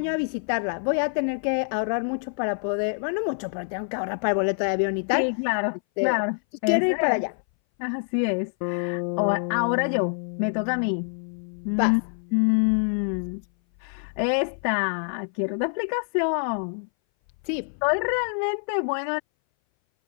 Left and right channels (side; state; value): right; silent; 59 dB below the other